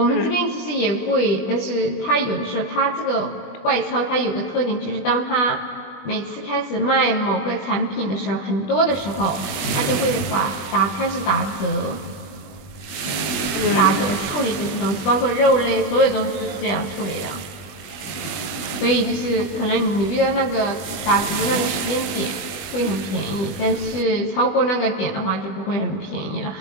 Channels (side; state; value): right; late; 20 ms